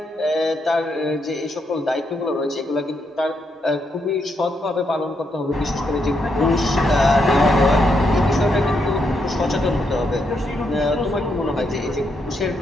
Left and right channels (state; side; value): normal; both; correlation 0.79